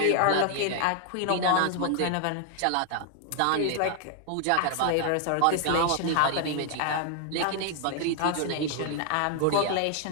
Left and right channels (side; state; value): both; different; correlation 0.00